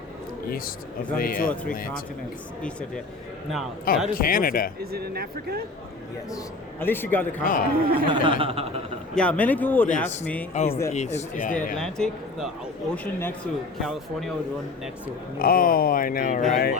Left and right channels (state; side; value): quieter; right; 3.5 dB